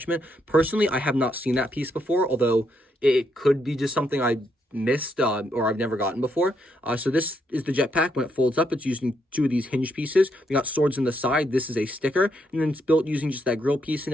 Personally, I have not seen that piece before, although it could be just something I missed or I've never gotten before. So this is the jetpack. When it folds up, it's using 2 of these hinge pieces. We got swords in the side. This is a sticker, and then it's built using just that grill piece and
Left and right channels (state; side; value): normal; both; correlation 0.77